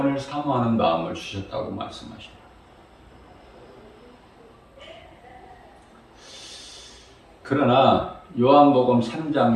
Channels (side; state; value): both; identical; correlation 1.00